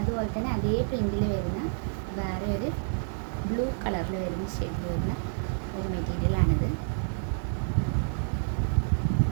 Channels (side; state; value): left; silent; 59 dB below the other